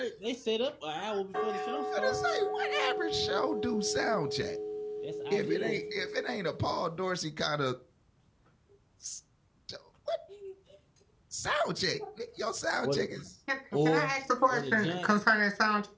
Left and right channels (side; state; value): both; identical; correlation 1.00